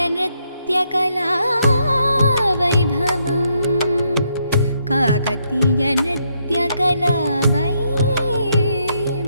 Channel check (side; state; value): both; inverted; correlation -0.76